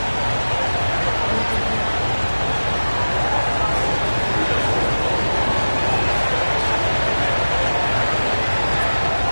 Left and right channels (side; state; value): both; inverted; correlation -1.00